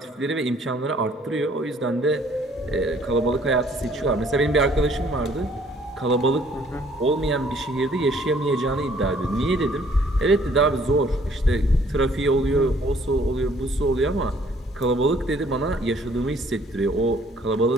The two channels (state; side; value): normal; both; correlation 0.61